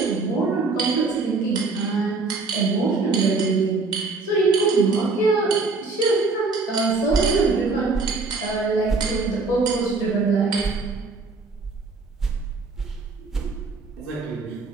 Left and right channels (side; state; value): left; quieter; 3.9 dB